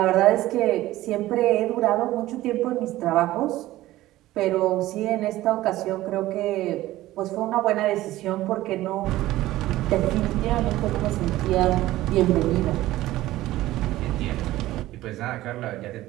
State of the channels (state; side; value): quieter; left; 16.0 dB